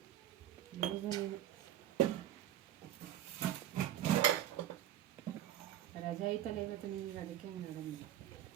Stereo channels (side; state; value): left; quieter; 12.0 dB